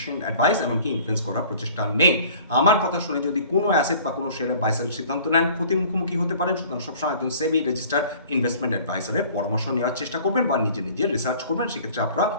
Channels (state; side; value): inverted; both; correlation -0.49